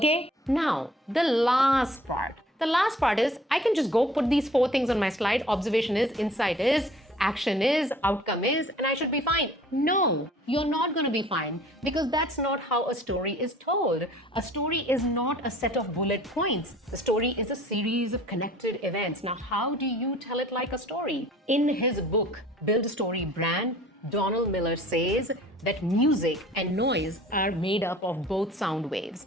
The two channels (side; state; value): both; normal; correlation 0.51